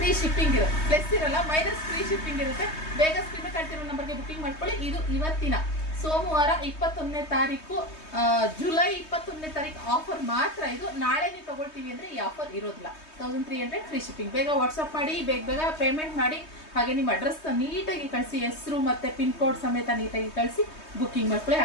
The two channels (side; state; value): right; late; 3.2 ms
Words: ಶಿಪ್ಪಿಂಗ್ ಇರುತ್ತೆ. ಪ್ಲಸ್ ಇರಲ್ಲ, ಮೈನಸ್ ಫ್ರೀ ಶಿಪ್ಪಿಂಗ್ ಇರುತ್ತೆ. ಬೇಗ ಸ್ಕ್ರೀನ್ ಕಳ್ತಿರೋ ನಂಬರ್ಗೆ ಬುಕಿಂಗ್ ಮಾಡ್ಕೊಳ್ಳಿ. ಇದು ಇವತ್ತಿನ ಸೋಮವಾರ 21ನೇ ತಾರೀಕು, ಜುಲೈ 21ನೇ ತಾರೀಕು ಆಫರ್ ಮಾತ್ರ. ಇದು ನಾಳೆ ನೀವು ತಗೊಳ್ತೀವಿ ಅಂದ್ರೆ ಈ ಆಫರ್ ಇರೋದಿಲ್ಲ. 1300 ಫ್ರೀ ಶಿಪ್ಪಿಂಗ್. ಬೇಗ ವಾಟ್ಸಪ್ ಮಾಡಿ, ಬೇಗ ಪೇಮೆಂಟ್ ಮಾಡಿ. ಹಾಗೆ ನಿಮ್ಮ ಅಡ್ರೆಸ್ ನೀಟಾಗಿ ಕಳಿಸಿ, ಹೆಸರು ಮತ್ತೆ ಪಿನ್ ಕೋಡ್ ಸಮೇತ ನೀಟಾಗಿ ಕಳಿಸಿ ಬುಕಿಂಗ್ ಮಾಡ್ಕೊಳ್ಳಿ.